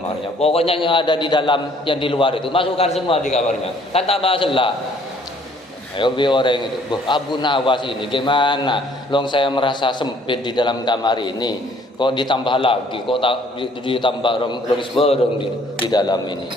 Pokoknya yang ada di dalam, yang di luar itu masukkan semua di kamarnya. Kan tambah selak. Ayo orang itu, Abu Nawas ini gimana? Long saya merasa sempit di dalam kamar ini. Kok ditambah lagi? Kok ditambah orang seberang di dalam ini?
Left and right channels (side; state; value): both; normal; correlation 0.60